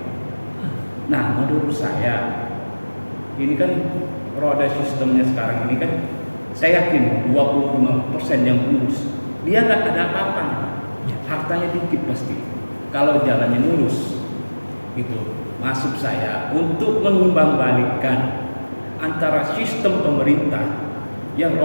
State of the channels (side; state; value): both; inverted; correlation -1.00